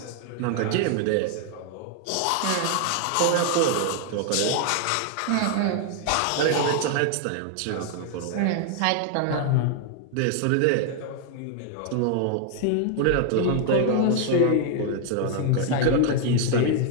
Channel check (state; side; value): different; both; correlation 0.00